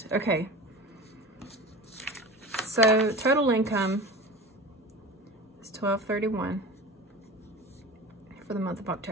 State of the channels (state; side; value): normal; both; correlation 0.34